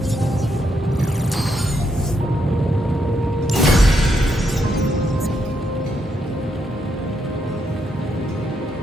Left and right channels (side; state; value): both; normal; correlation 0.79